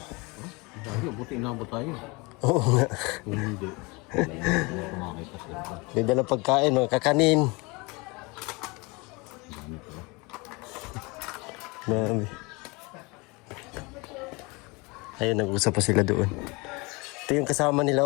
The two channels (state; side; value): quieter; right; 26.5 dB